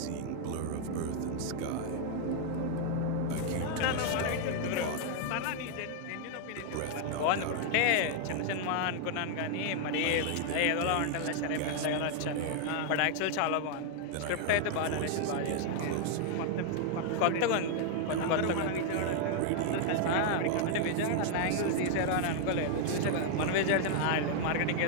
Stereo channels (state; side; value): different; both; correlation 0.00